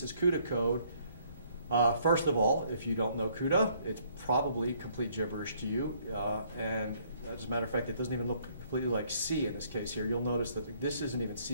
as CUDA code, First of all, if you don't know CUDA, it's probably complete gibberish to you. And as a matter of fact, it doesn't even look completely like C in this case here. You'll notice that this isn't even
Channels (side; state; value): both; inverted; correlation -0.64